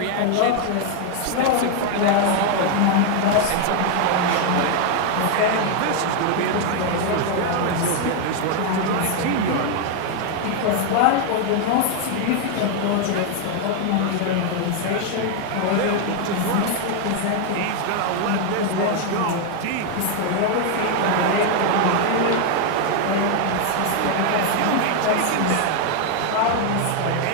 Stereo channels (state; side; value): different; both; correlation 0.00